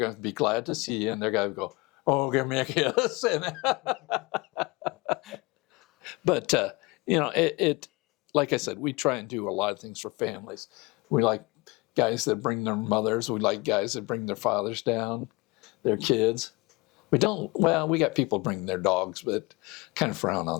to be glad to see you, and they're going to go, oh, give me a kiss. But, it like I said, we try and do a lot of things for families. We like guys that bring their mothers. We like guys that bring their fathers down, their kids. We got people bringing their dogs, but kind of frown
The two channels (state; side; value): quieter; right; 24.8 dB